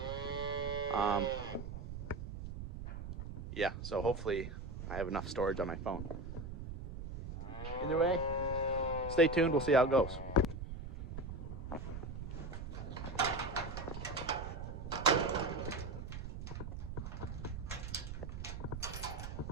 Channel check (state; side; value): noise; right; rumble, 7 dB below the sound